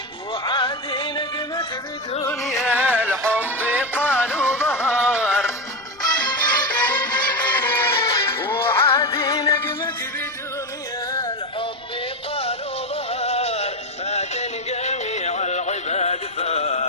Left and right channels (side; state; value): right; noise; rumble, 27 dB below the sound